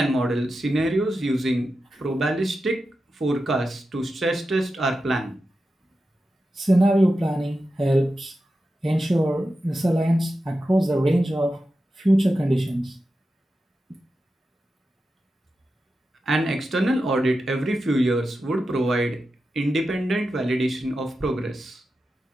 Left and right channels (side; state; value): both; normal; correlation 0.91